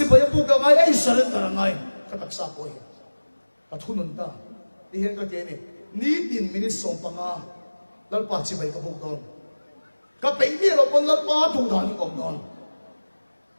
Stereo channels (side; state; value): both; inverted; correlation -1.00